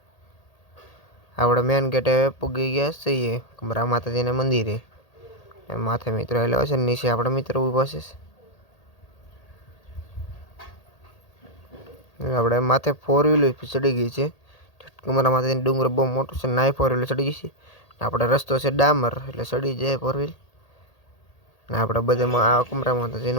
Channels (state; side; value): late; right; 1.8 ms